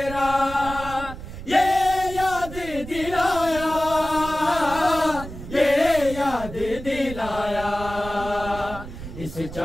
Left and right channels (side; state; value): right; noise; rumble, 11 dB below the sound